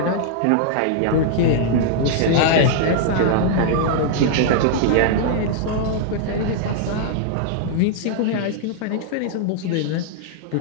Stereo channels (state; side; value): different; both; correlation -0.01